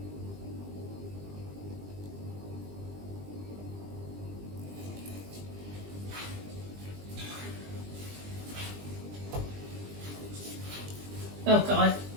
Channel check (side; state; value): left; late; 20 ms